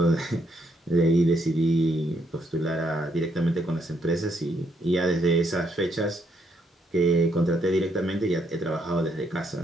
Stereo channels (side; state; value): both; normal; correlation 0.74